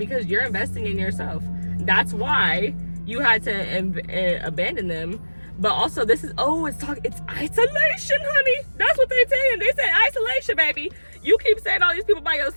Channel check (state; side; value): inverted; both; correlation -1.00